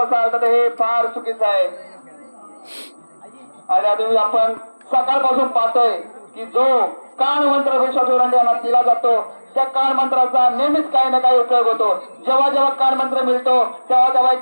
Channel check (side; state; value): both; inverted; correlation -1.00